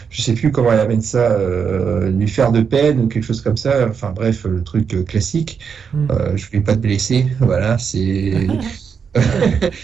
je sais plus comment elle amène ça, lui faire de peine ou quelque chose comme ça. Enfin bref, le truc classique. Je voulais pas te blesser. Voilà, c'est.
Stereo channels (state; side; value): quieter; left; 6.5 dB